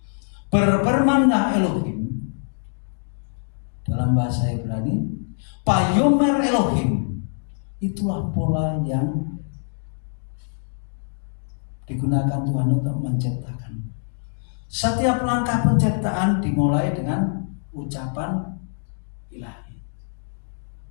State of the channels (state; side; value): silent; right; digital silence